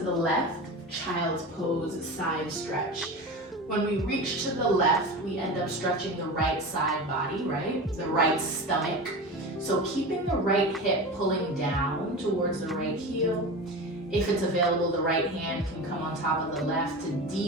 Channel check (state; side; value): normal; both; correlation 0.28